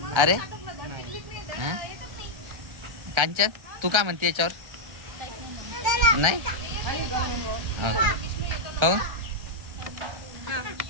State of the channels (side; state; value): left; late; 1.3 ms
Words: अरे हां कांचन, तू काय म्हणते याच्यावर? नाही हो,